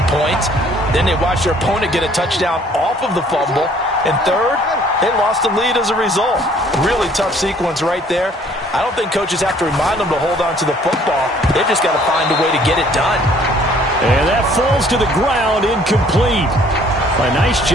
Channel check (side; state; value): both; normal; correlation 0.58